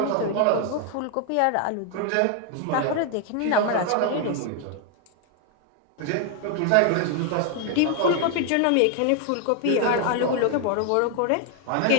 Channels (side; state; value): both; different; correlation 0.00